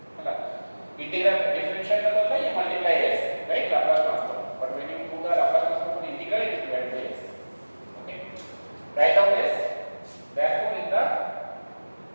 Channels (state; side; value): inverted; both; correlation -1.00